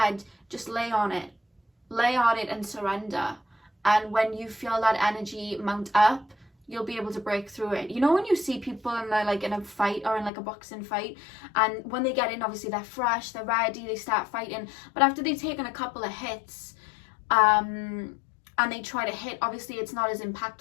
just lay on it. Lay on it and surrender. And when you feel that energy mount up, you'll be able to break through it. You know when you see people and they're like in a fight or in like a boxing fight, and when they get in, obviously they're fresh, they're ready, they start fighting. But after they've taken a couple of hits, and they try to hit, obviously it's not as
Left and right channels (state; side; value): drops out; right; at 10.3 s